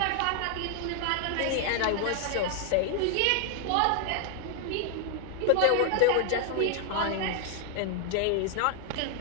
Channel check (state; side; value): different; both; correlation 0.00